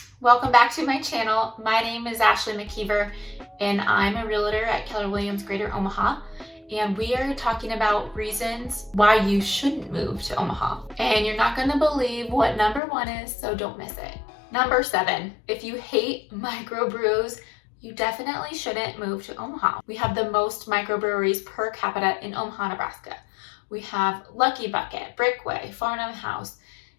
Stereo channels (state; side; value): drops out; right; at 12.8 s